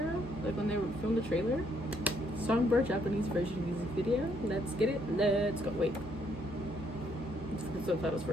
Like when they filmed the trailer? Songbird Japanese version music video. Let's get it. Let's go. Wait. Let's get the subtitles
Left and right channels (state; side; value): normal; both; correlation 0.70